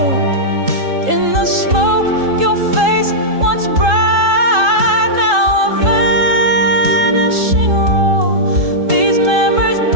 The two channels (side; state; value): left; late; 3.8 ms